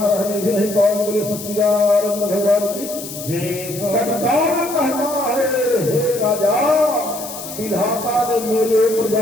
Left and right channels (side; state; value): left; noise; hiss, 11 dB below the sound